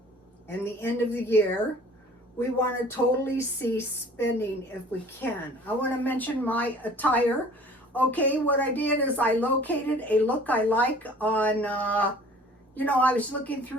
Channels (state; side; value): normal; both; correlation 0.49